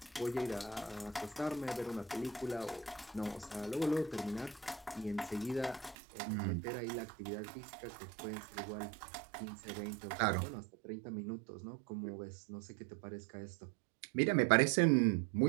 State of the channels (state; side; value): drops out; left; at 6.0 s